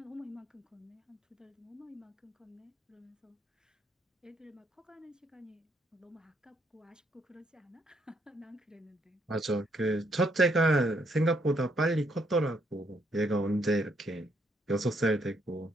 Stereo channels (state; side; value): normal; both; correlation 0.72